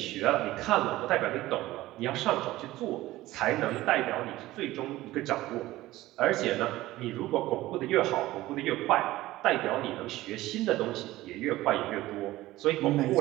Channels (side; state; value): left; quieter; 16.9 dB